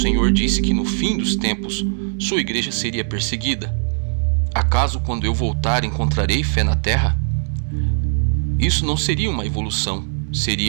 Senhor disse que no fim dos tempos, sua igreja seria perseguida. Acaso quando eu voltar encontrarei fé na terra? Isso não seria uma evolução,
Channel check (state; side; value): silent; left; 61 dB below the other